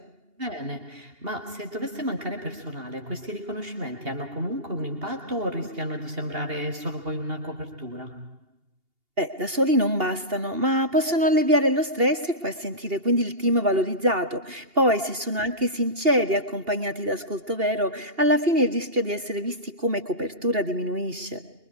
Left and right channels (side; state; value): left; late; 2.8 ms